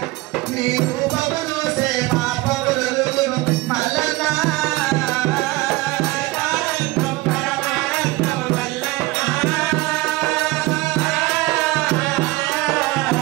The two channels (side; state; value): left; quieter; 20.4 dB